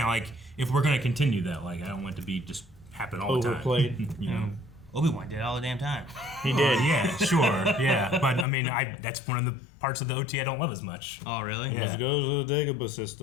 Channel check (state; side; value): drops out; right; at 8.5 s